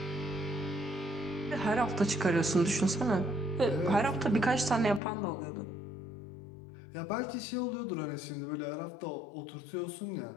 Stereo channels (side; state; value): right; drops out; at 5.0 s